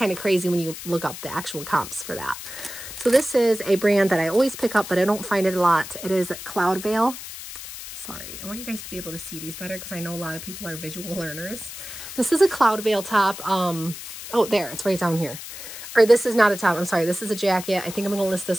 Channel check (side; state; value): left; noise; hiss, 11 dB below the sound